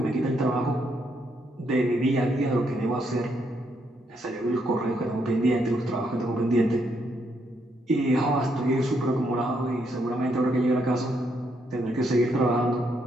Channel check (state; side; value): normal; both; correlation 0.76